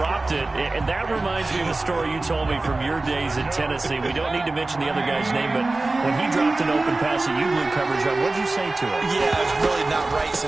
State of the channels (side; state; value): left; quieter; 3.2 dB